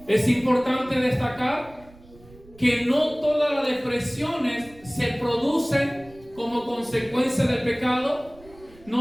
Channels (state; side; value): noise; right; rumble, 24 dB below the sound